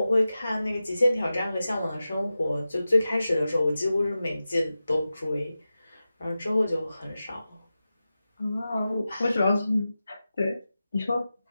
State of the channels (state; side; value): inverted; both; correlation -0.94